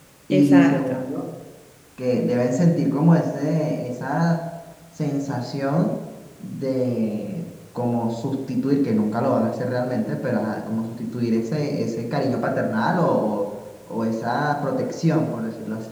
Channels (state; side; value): identical; both; correlation 1.00